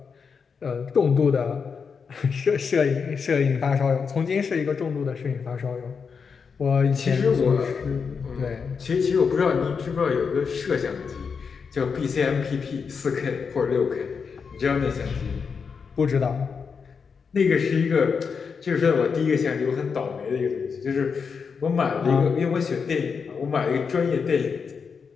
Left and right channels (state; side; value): quieter; right; 5.8 dB